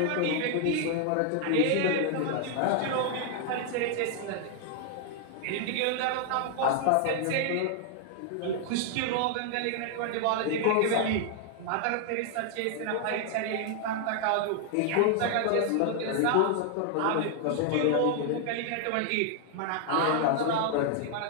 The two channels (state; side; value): different; both; correlation 0.00